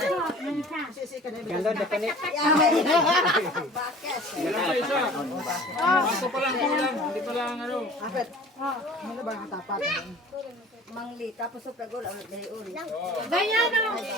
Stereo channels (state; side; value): normal; both; correlation 0.45